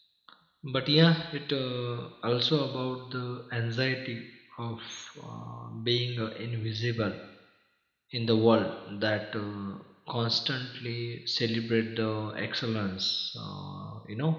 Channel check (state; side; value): identical; both; correlation 1.00